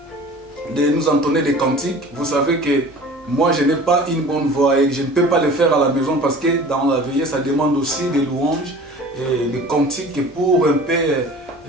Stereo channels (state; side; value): normal; both; correlation 0.43